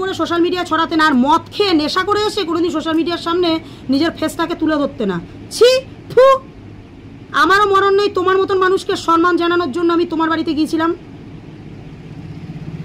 করে সোশ্যাল মিডিয়ায় ছড়াতে না, আর মদ খেয়ে নেশা করে এসে কোনোদিন সোশ্যাল মিডিয়ার সামনে নিজের ফেসটাকে তুলে ধরতে না। ছি, ফু। আমারও মরণ নেই তোমার মতন মানুষকে সম্মান জানানোর জন্য আমি তোমার বাড়িতে গিয়েছিলাম।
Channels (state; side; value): identical; both; correlation 1.00